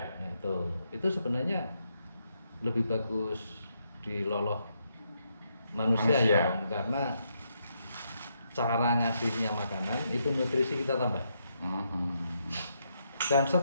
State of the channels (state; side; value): inverted; both; correlation -0.79